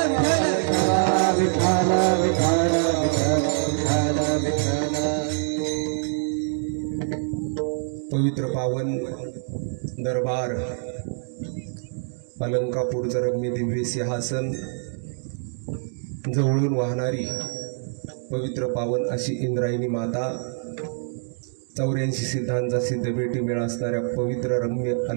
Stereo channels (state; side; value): silent; left; digital silence